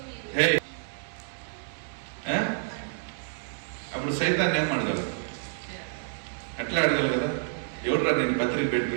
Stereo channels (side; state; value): left; silent; digital silence